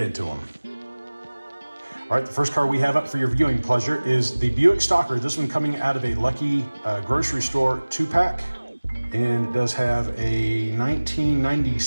them. All right, the first car we have up for your viewing pleasure is the Buick Stalker. This one coming out of a Lucky grocery store 2-pack. And it does have a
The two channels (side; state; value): both; inverted; correlation -1.00